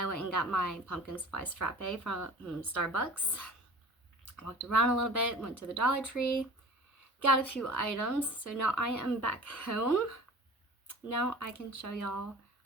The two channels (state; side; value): normal; both; correlation 0.42